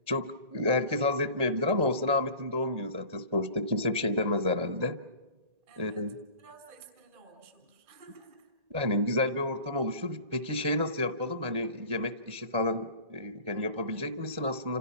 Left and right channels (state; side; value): late; left; 1.9 ms